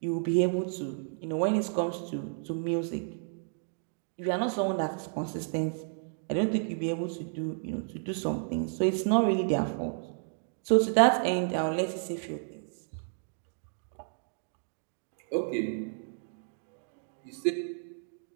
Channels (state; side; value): silent; left; digital silence